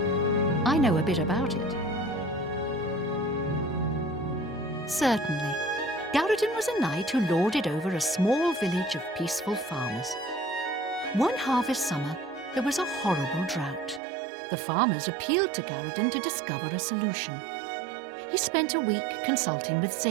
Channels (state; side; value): drops out; left; at 14.0 s